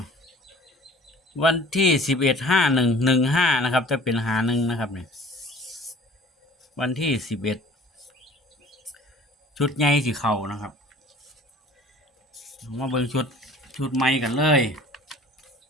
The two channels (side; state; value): both; normal; correlation 0.49